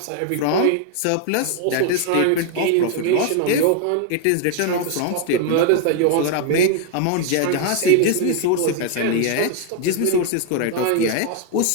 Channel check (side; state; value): both; different; correlation 0.00